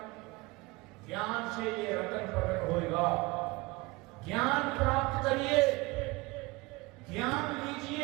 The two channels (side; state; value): left; quieter; 23.4 dB